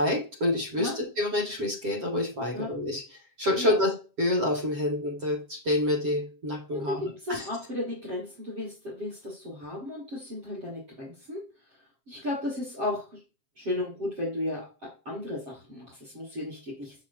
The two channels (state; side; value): late; left; 7.5 ms